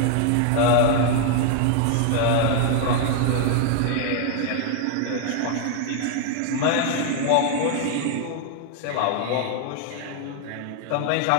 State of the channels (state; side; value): different; both; correlation 0.00